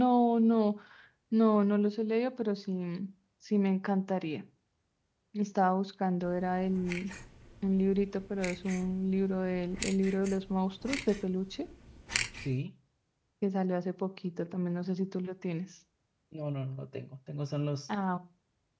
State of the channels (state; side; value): identical; both; correlation 1.00